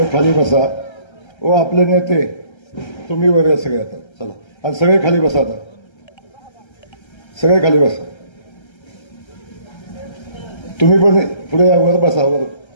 खाली बसा. ओ आपले नेते तुम्ही वर या सगळे. आता चला आणि सगळे खाली बसा. आता सगळे खाली बसा. तुम्ही पण पुढे या, वर बसा, वर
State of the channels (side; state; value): right; late; 1.3 ms